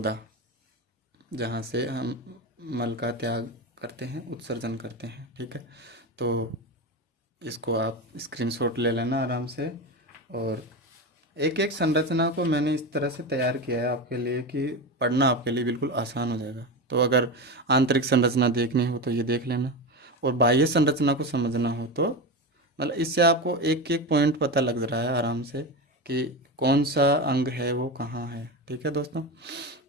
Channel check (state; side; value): normal; both; correlation 0.20